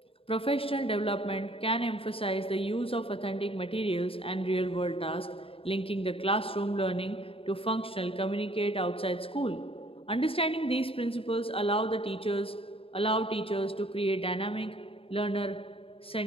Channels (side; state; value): right; late; 0.27 ms